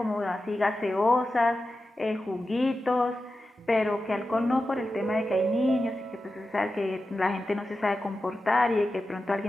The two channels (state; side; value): normal; both; correlation 0.92